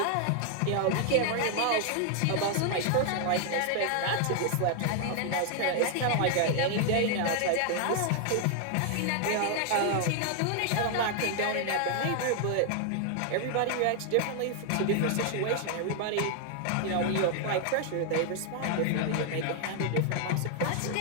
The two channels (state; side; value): different; both; correlation 0.00